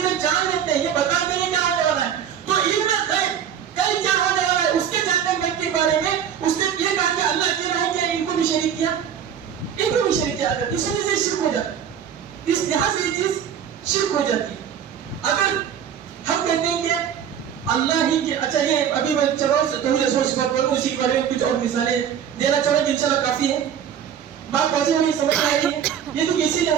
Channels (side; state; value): left; quieter; 8.7 dB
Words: جان لیتے ہیں, یہ بتاتے ہیں کیا ہونے والا ہے. تو علم غیب, کل کیا ہونے والا ہے اس کے جاننے کے بارے میں اس نے یہ کہا کہ اللہ اکیلا ہے, کیا ان کو بھی شریک کیا؟ ان کو بھی شریک کیا. اگر اس وجہ سے شرک ہو جاتا ہے, اس لحاظ سے یہ چیز شرک ہو جاتی ہے. اگر ہم کہتے ہیں کہ اللہ ہی کے, اچھا یہ ابھی میں چلو توحید اسماء و صفات کروں, اسی کے بارے میں کچھ اور مثالیں دینا چاہوں گا, انشاءاللہ کافی ہے. بات واضح ہونی سمجھ آ رہی ہے. یہ تو کسی